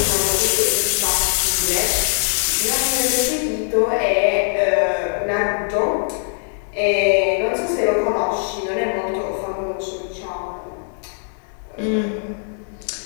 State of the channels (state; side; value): silent; right; digital silence